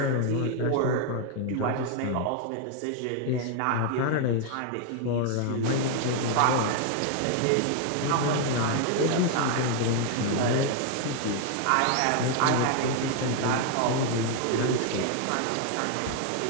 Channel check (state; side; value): different; both; correlation 0.00